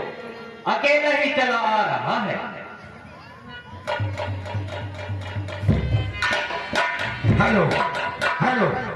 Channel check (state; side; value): identical; both; correlation 1.00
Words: अकेला ही चला आ रहा है। हेलो हेलो,